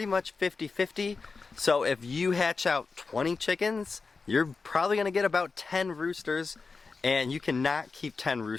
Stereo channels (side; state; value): right; quieter; 4.4 dB